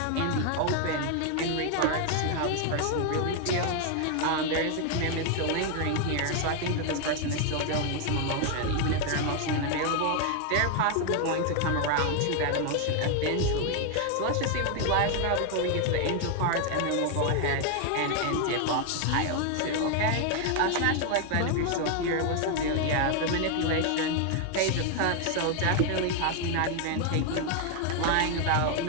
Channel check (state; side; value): different; both; correlation 0.01